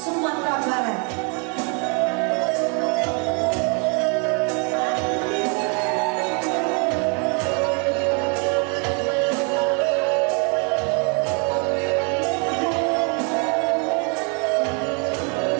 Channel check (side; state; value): left; quieter; 36.5 dB